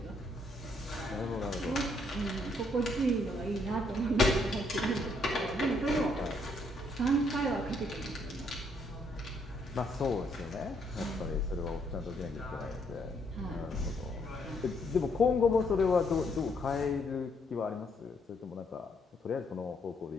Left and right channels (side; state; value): both; normal; correlation 0.71